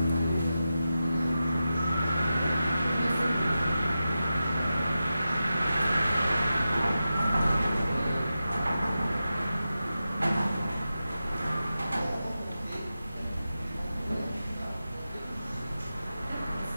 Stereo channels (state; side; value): inverted; both; correlation -0.92